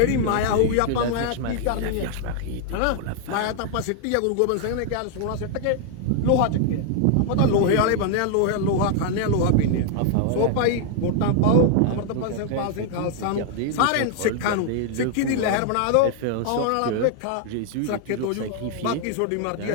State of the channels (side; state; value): both; different; correlation 0.00